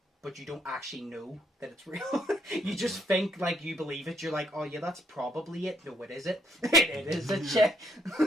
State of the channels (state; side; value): normal; both; correlation 0.73